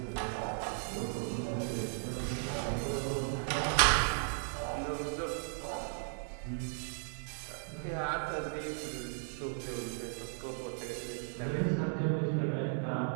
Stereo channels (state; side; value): silent; left; 54 dB below the other